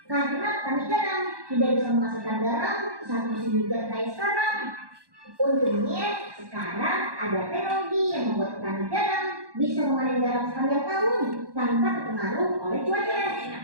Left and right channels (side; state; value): left; late; 1.2 ms